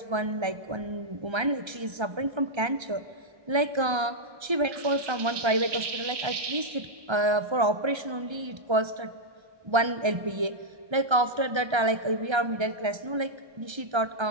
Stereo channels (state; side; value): late; left; 1.3 ms